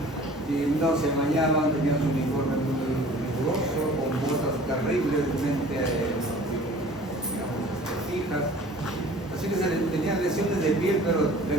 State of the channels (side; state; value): both; normal; correlation 0.47